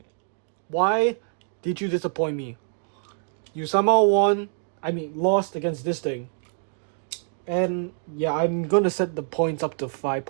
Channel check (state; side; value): silent; left; 61 dB below the other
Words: Why did you disappoint me? You somehow lost against this thing. And yeah, I'm gonna set the points up to 5